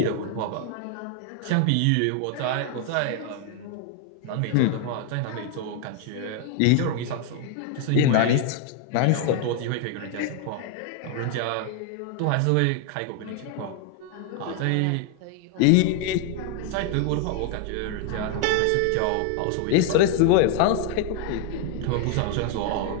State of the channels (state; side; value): different; both; correlation 0.00